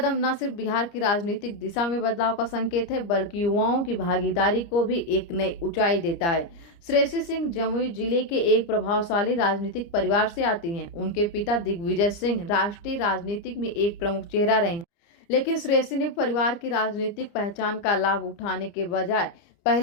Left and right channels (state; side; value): late; right; 30 ms